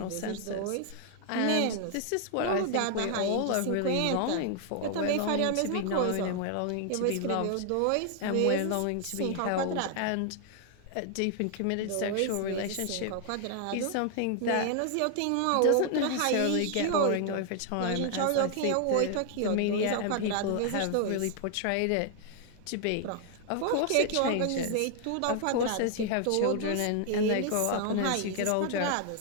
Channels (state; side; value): different; both; correlation 0.00